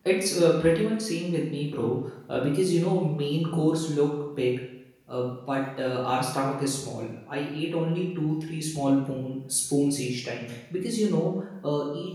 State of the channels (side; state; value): both; identical; correlation 1.00